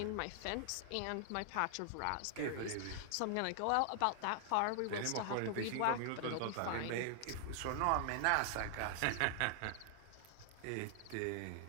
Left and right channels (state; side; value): different; both; correlation 0.00